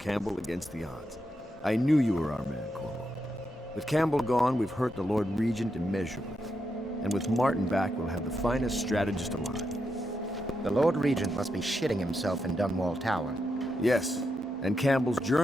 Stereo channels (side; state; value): both; normal; correlation 0.84